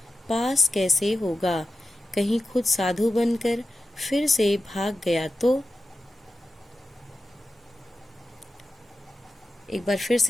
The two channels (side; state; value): both; normal; correlation 0.93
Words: पास कैसे होगा, कहीं खुद साधु बनकर फिर से भाग गया तो। एक बार फिर